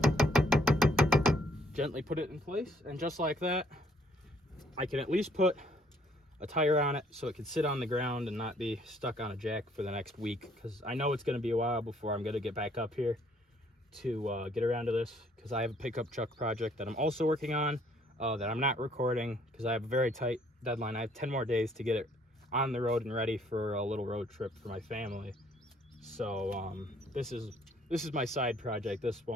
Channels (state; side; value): normal; both; correlation 0.64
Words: gently put it in place, and just like that, I can at least put a tire on it so it can sit on the ground and not be stuck on a jack for the next week, because I know it's going to be a while before I'm going to get back up here to get around to this, because I have a pickup truck project that I'm also working on that I'm not recording because I have a very tight deadline. I have 10 more days to get it on the road and ready for a little road trip for my family. So this is my side project. This